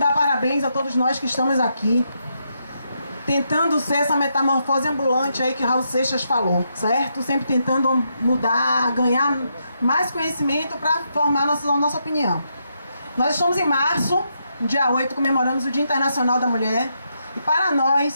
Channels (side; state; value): both; inverted; correlation -0.80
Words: parabéns a todos nós que estamos aqui, tentando ser essa metamorfose ambulante aí que Raul Seixas falou, certo? Sempre tentando mudar, ganhar mais conhecimento para formar nossa opinião. Nós estamos em março, dia 8, comemoramos o Dia Internacional da Mulher. E para